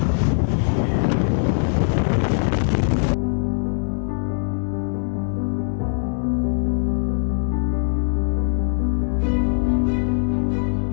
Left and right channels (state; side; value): silent; right; 65 dB below the other